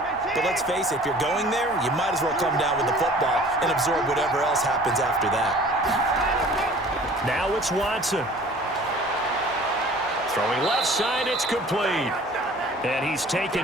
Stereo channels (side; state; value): left; noise; hum, 24 dB below the sound